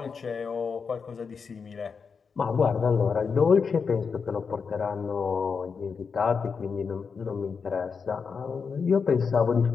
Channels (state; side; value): quieter; right; 5.6 dB